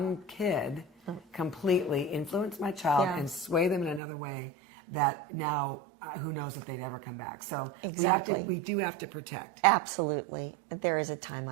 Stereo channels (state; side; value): drops out; left; at 4.0 s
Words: kid completely influence my child and sway them in another way that now who knows if they'd ever come back. So we do have to protect. Absolutely. There is a time